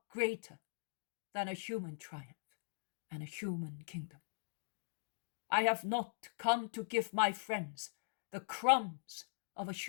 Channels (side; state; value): right; silent; digital silence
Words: greater than a human triumph and a human kingdom. I have not come to give my friends the crumbs of a